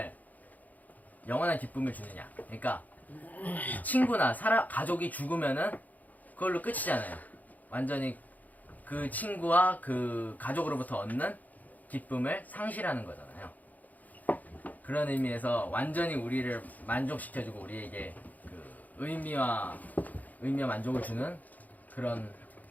영원한 기쁨을 주느냐. 그러니까 친구나 가족이 죽으면은 그걸로 끝이잖아요. 완전히 그 친구와 그 가족으로부터 얻는 기쁨을 상실하는 거잖아요. 그런 의미에서 완전히 우리를 만족시켜주고 우리에게 그 의미와 만족을 주는 그런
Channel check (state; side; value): late; right; 0.080 ms